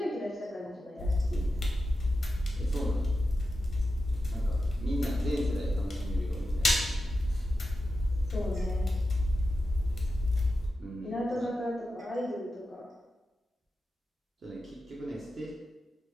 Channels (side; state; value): both; normal; correlation 0.91